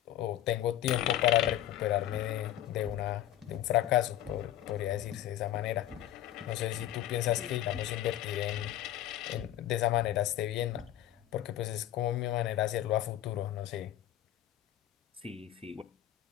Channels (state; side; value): quieter; right; 13.0 dB